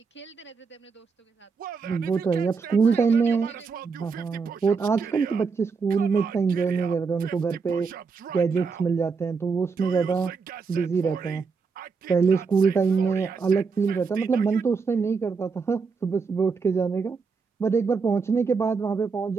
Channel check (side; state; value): left; quieter; 5.1 dB